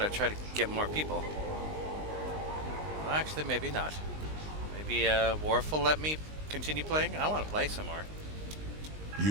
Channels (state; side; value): late; left; 19 ms